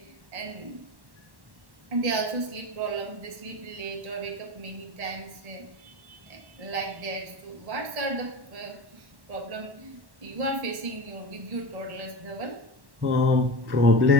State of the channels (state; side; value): late; left; 1.1 ms